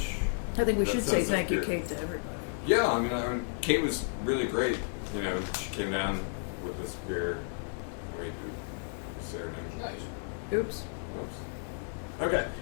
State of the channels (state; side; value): silent; right; 56 dB below the other